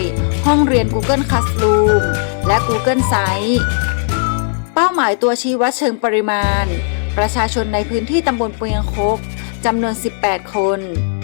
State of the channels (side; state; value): right; silent; digital silence